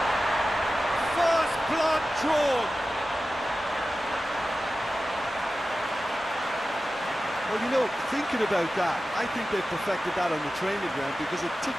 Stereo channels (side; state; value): both; normal; correlation 0.94